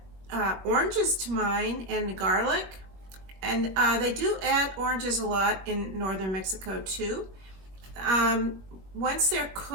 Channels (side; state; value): left; late; 21 ms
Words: oranges to mine and garlic, and they do add oranges a lot in northern Mexico too. Once they're